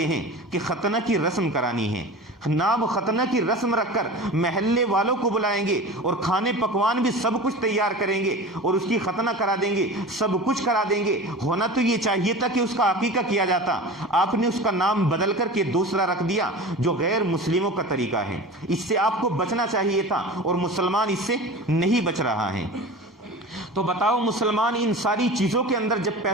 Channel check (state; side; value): normal; both; correlation 0.34